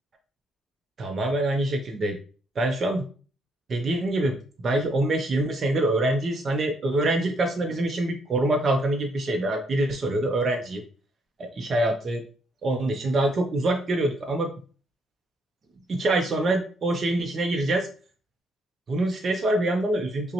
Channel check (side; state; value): both; normal; correlation 0.72